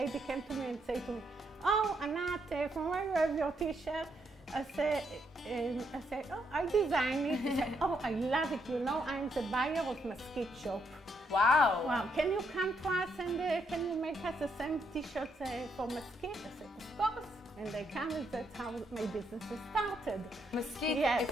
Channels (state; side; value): normal; both; correlation 0.76